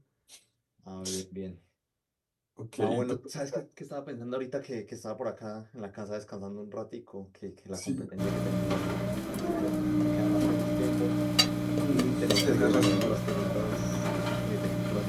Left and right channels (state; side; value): identical; both; correlation 1.00